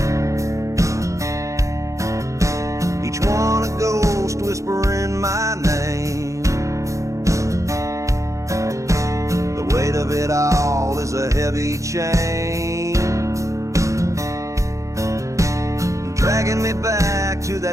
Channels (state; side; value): late; left; 0.15 ms